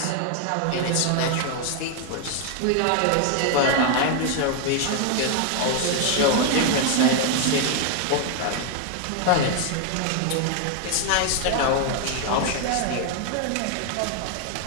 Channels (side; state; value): both; different; correlation 0.00